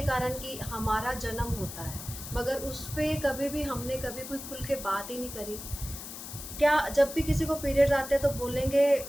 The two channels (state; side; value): noise; left; hiss, 10 dB below the sound